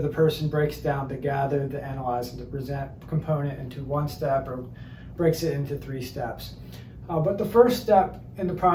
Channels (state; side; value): identical; both; correlation 1.00